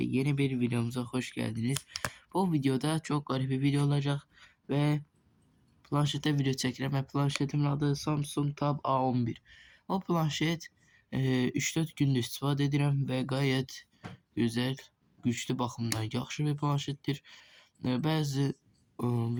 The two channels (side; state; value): both; identical; correlation 1.00